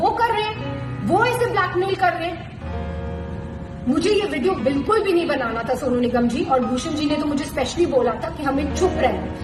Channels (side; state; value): both; identical; correlation 1.00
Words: कर रहे हैं, वो इसे ब्लैकमेल कर रहे हैं। मुझे ये वीडियो बिल्कुल भी नहीं बनाना था सोनू निगम जी, और भूषण जी ने तो मुझे स्पेशली बोला था कि हमें चुप